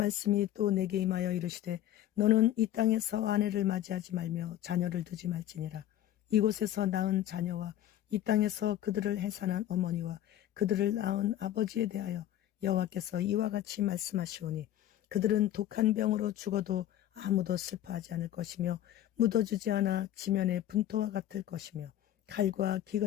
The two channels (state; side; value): quieter; right; 12.4 dB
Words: 또 내게 임하여 이르시되 너는 이 땅에서 아내를 맞이하지 말며 자녀를 두지 말지니라. 이곳에서 낳은 자녀와 이 땅에서 그들을 해산한 어머니와 그들을 낳은 아버지에 대하여 여호와께서 이와 같이 말씀하시오니 그들은 독한 병으로 죽어도 아무도 슬퍼하지 않을 것이며 묻어주지 않아 지면의 분토와 같을 것이며 칼과